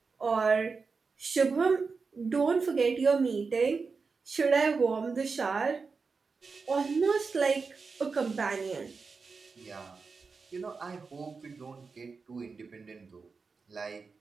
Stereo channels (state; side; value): quieter; left; 4.7 dB